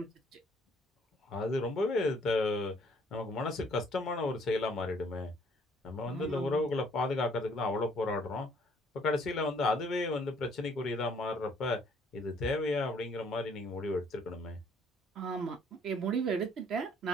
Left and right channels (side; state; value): both; normal; correlation 0.62